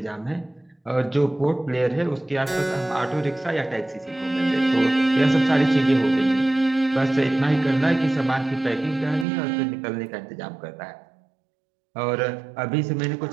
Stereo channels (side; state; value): left; drops out; at 9.2 s